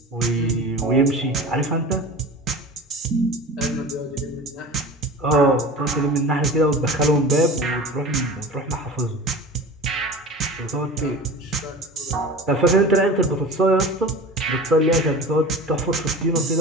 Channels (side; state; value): both; normal; correlation 0.36